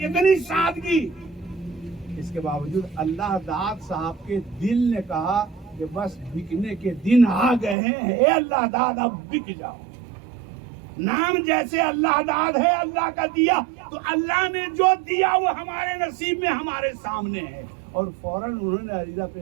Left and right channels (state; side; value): drops out; left; at 7.8 s